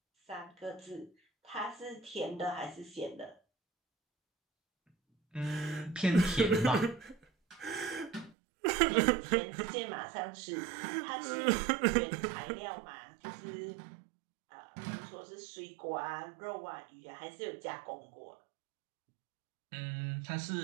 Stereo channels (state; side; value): drops out; left; at 8.3 s